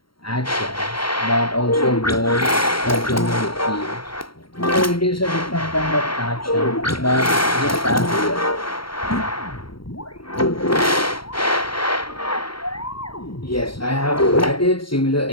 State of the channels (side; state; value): right; late; 0.74 ms